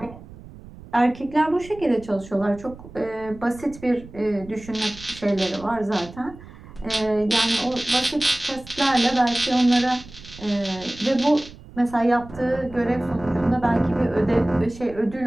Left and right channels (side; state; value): right; noise; rumble, 18 dB below the sound